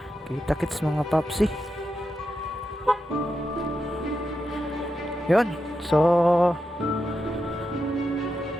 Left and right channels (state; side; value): normal; both; correlation 0.87